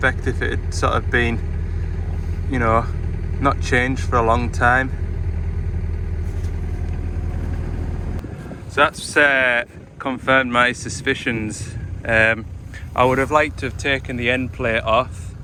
if it had sort of been, you know, not changed for a long time. So that's confirmed my suspicions. I would have liked to have taken the end plate off,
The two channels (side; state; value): both; identical; correlation 1.00